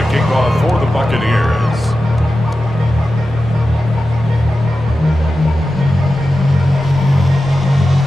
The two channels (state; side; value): normal; both; correlation 0.93